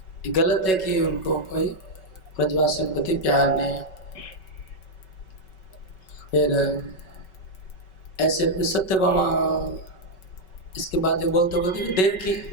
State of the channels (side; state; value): right; late; 5.3 ms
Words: ये गलत है कि उनको कोई ब्रजवासी के प्रति प्यार नहीं है। फिर ऐसे सत्यभामा इसके बाद ये बोलते बोलते देव की